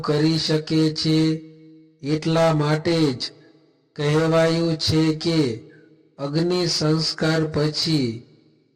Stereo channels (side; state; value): both; identical; correlation 1.00